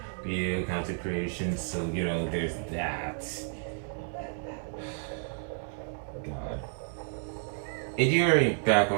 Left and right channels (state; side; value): silent; left; digital silence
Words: video content creation, so there's that. God. If you hear any